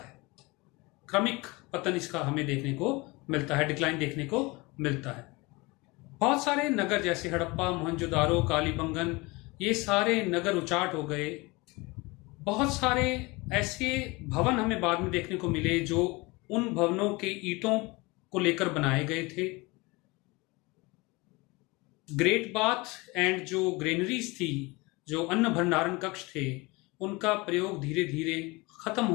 क्रमिक पतन इसका हमें देखने को मिलता है, डिक्लाइन देखने को मिलता है। बहुत सारे नगर जैसे हड़प्पा, मोहनजोदारो, कालीबंगन, ये सारे नगर उचाट हो गए। बहुत सारे ऐसे भवन हमें बाद में देखने को मिले जो उन भवनों के ईंटों को लेकर बनाए गए थे। ग्रेट बाथ एंड जो ग्रेनरीज थी, जो अन्न भंडारण कक्ष थे, उनका प्रयोग धीरे धीरे खत्म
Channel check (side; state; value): right; quieter; 24.5 dB